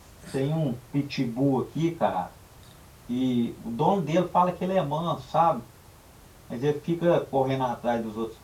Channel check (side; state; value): both; identical; correlation 1.00